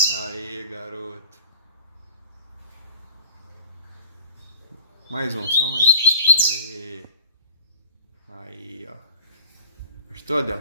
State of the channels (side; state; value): both; inverted; correlation -0.41